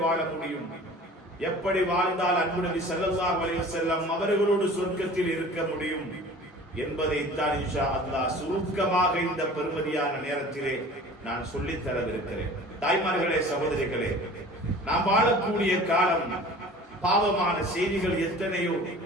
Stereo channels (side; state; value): both; normal; correlation 0.43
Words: வாழ முடியும், எப்படி வாழ்ந்தால் அன்பு நபி ஸல்லல்லாஹு அலைஹி வஸல்லம் அவர்களோடு சொர்க்கத்தில் இருக்க முடியும் என்பதைத்தான் இன்ஷா அல்லாஹ் சுருக்கமாக இந்த பெருமதியான நேரத்திலே நான் சொல்லித் தரவிருக்கிறேன். தாய்மார்களே, சகோதரிகளே, நாம் வாழக்கூடிய காலம் பாவமான செய்திகள் எத்தனையோ